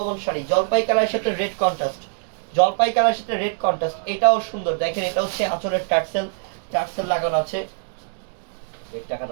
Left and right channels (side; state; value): left; silent; digital silence